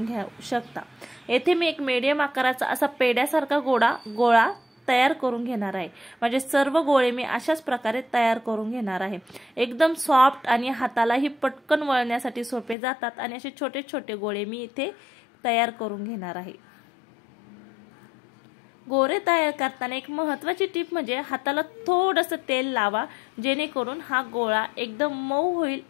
घेऊ शकता। येथे मी एक मीडियम आकाराचा असा पेड्यासारखा गोळा तयार करून घेणार आहे। म्हणजे सर्व गोळे मी अशाच प्रकारे तयार करून घेणार आहे। एकदम सॉफ्ट आणि हातालाही पटकन वळण्यासाठी सोपे जातात आणि असे छोटे छोटे गोळे मी इथे तयार करून घेणार आहे। गोळे तयार करताना एक महत्त्वाची टिप म्हणजे हाताला थोडंसं तेल लावा, जेणेकरून हा गोळा एकदम मऊ होईल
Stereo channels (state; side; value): drops out; right; at 12.8 s